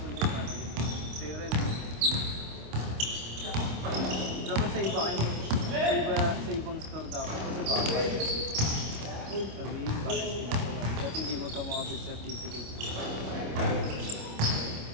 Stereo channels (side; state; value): left; late; 26 ms